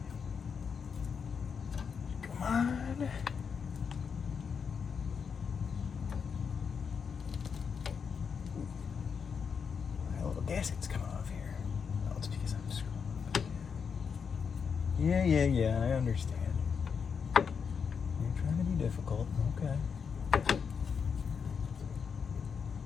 Gasket's coming off here. Oh, it's because I'm screwing. Yeah, I understand. You're trying to be difficult. Okay.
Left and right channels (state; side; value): quieter; right; 6.3 dB